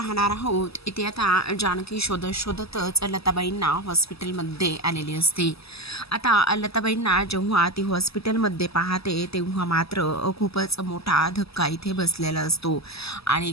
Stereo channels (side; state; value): right; late; 0.78 ms